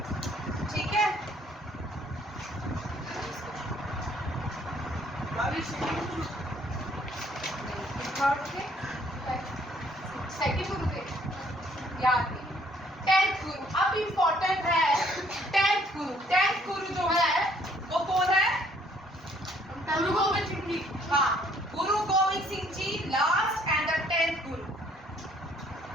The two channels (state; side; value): normal; both; correlation 0.63